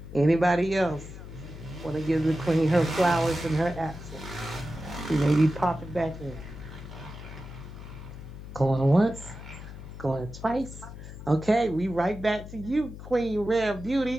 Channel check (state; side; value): noise; left; hum, 13 dB below the sound